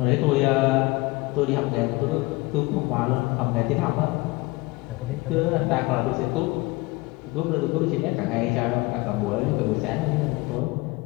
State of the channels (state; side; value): quieter; right; 23.1 dB